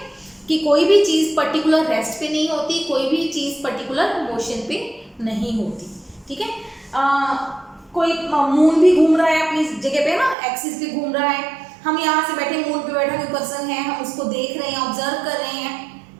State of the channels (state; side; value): drops out; left; at 10.4 s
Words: कि कोई भी चीज पर्टिकुलर रेस्ट पे नहीं होती, कोई भी चीज पर्टिकुलर मोशन पे नहीं होती, ठीक है। कोई मून भी घूम रहा है अपनी जगह पे ना, एक्सिस पे घूम रहा है, हम यहाँ से बैठे, मून पे बैठा कोई पर्सन है, हम उसको देख रहे हैं, ऑब्जर्व कर रहे हैं,